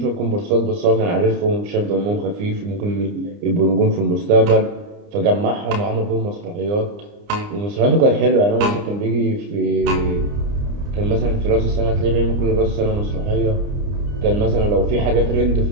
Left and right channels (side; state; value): left; late; 29 ms